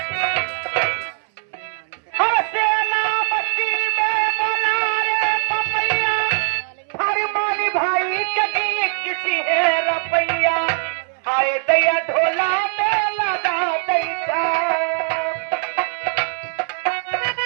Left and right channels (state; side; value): silent; left; 62 dB below the other